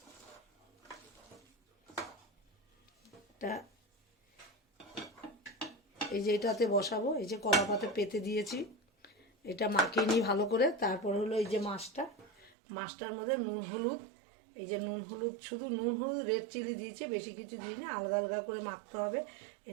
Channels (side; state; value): left; drops out; at 12.5 s